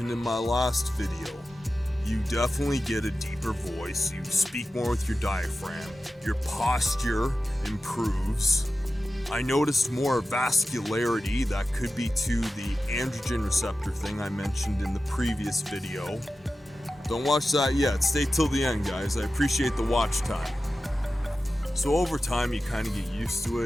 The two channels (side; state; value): both; normal; correlation 0.93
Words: in my last video, you definitely get a deeper voice, you speak more with your diaphragm, your posture improves. I noticed more vascularity. That could be to the androgen receptor thing I mentioned in the previous video. Don't watch that yet, stay till the end guys, I appreciate the watch time. So over time you kind of get used to